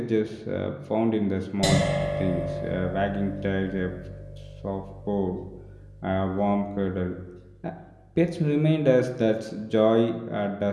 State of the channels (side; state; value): both; identical; correlation 1.00